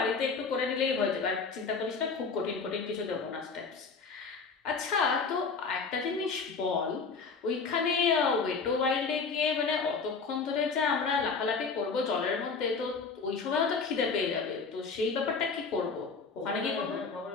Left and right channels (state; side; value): quieter; right; 4.9 dB